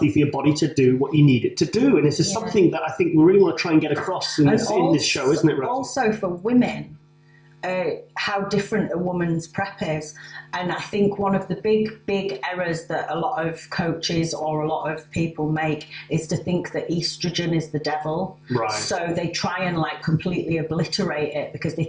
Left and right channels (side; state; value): both; identical; correlation 1.00